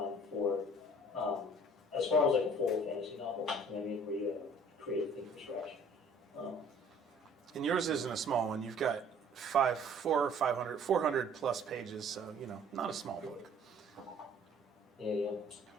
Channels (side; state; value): both; normal; correlation 0.54